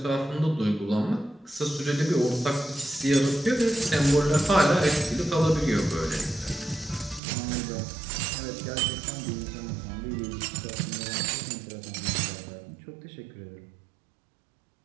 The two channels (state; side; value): drops out; left; at 7.2 s